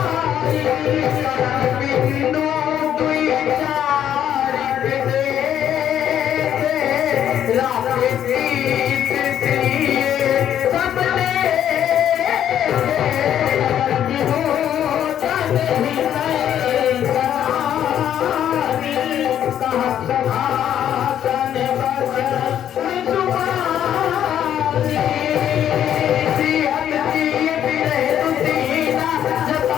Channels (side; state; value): right; quieter; 10.2 dB